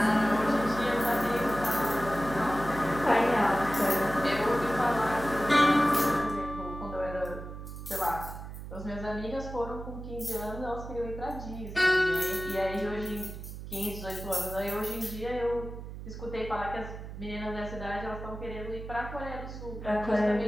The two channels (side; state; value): right; noise; hum, 10 dB below the sound